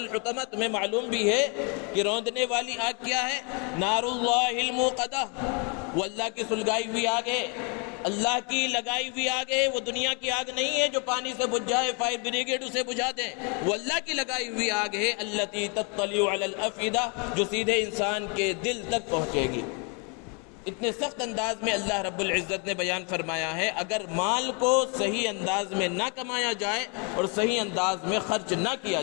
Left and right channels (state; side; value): quieter; right; 35.2 dB